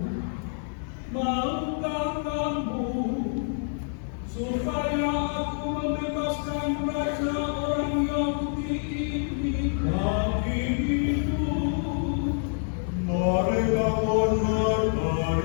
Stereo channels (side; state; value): right; silent; digital silence